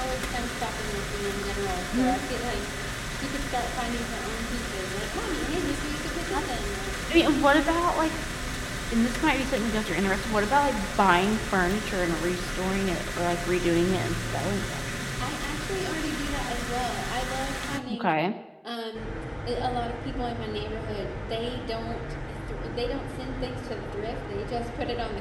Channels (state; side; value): identical; both; correlation 1.00